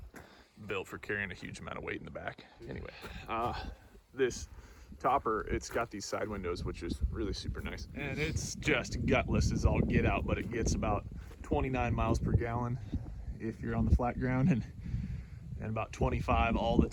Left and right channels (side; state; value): both; identical; correlation 1.00